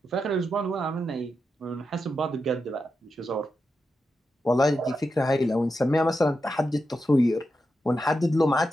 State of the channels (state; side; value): normal; both; correlation 0.87